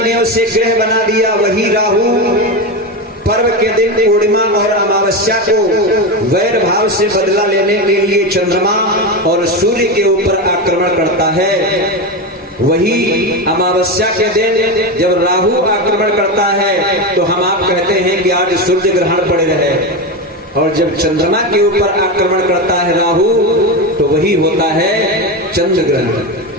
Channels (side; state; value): both; normal; correlation 0.17